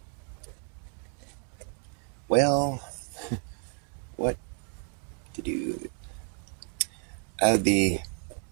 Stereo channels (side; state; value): left; quieter; 39.7 dB